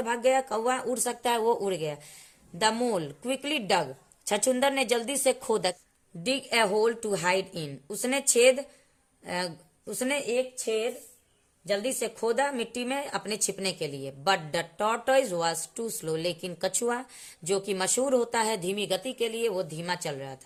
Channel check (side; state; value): both; identical; correlation 1.00